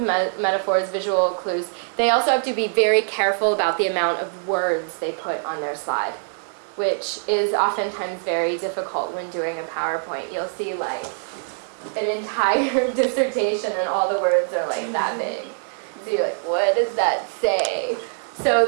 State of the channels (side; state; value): left; silent; digital silence